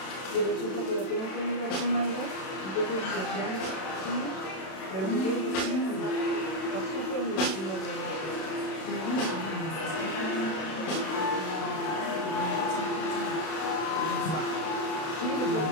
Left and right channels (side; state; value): right; late; 32 ms